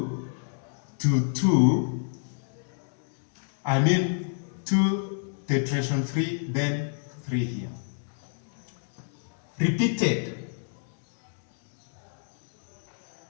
to 2, 2 tetration 3, then 3 here. Repeated.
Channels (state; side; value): silent; right; digital silence